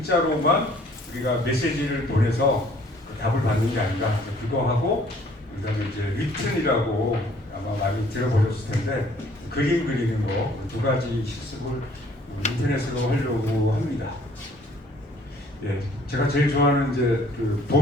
우리가 메시지를 보내서 답을 받는 게 아니라 그거 하고 그다음에 이제 리튼이라고 아마 많이 들어보셨을 텐데 그림 그리는 거 2가지 실습을 인터넷으로 하려고 합니다. 예, 제가 제일 좋아하는 이제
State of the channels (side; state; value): both; normal; correlation 0.58